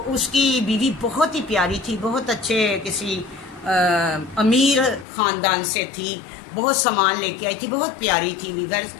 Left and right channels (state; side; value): drops out; right; at 5.1 s